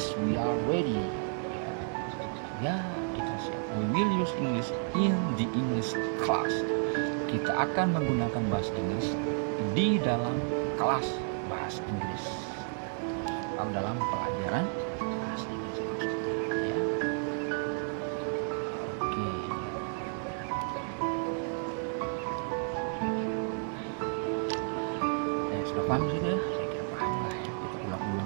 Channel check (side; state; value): left; silent; 57 dB below the other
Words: we are ready. Ya, kita siap. We will use English in the English class. Kita akan menggunakan bahasa Inggris di dalam kelas bahasa Inggris atau dalam pelajaran bahasa Inggris ya. Oke. Ya, sudah paham sudah? Saya kira paham lah ya. Kita